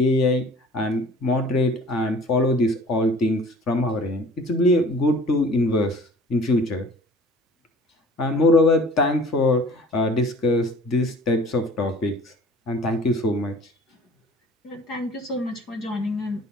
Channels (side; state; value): both; normal; correlation 0.47